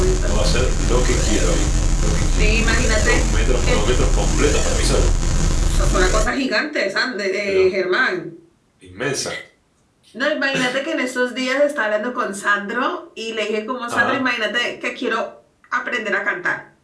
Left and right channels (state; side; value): identical; both; correlation 1.00